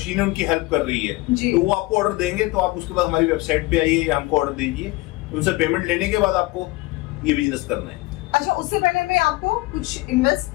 उनकी हेल्प कर रही है। तो वो आपको ऑर्डर देंगे तो आप उसके बाद हमारी वेबसाइट पे आइए या हमको ऑर्डर दीजिए, उनसे पेमेंट लेने के बाद आपको ये बिजनेस करना है। अच्छा, उससे पहले मैं आपको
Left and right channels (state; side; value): quieter; right; 21.5 dB